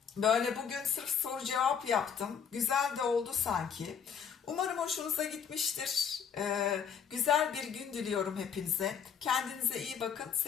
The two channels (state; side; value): quieter; right; 7.3 dB